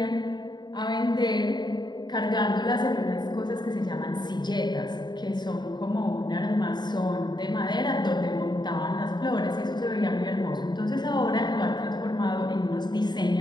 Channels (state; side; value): late; right; 0.21 ms